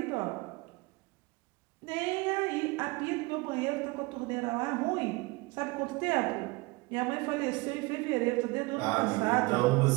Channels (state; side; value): quieter; left; 24.6 dB